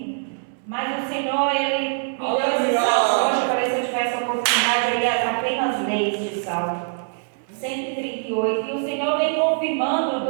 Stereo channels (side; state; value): left; silent; digital silence